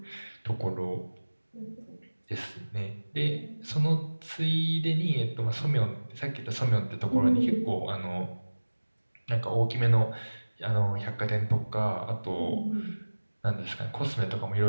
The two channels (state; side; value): inverted; both; correlation -1.00